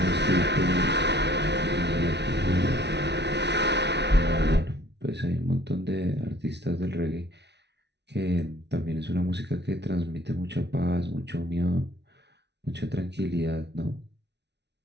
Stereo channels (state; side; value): late; left; 0.50 ms